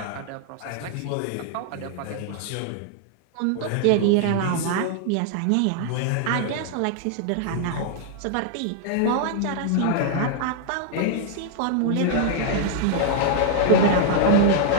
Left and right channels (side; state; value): both; different; correlation -0.01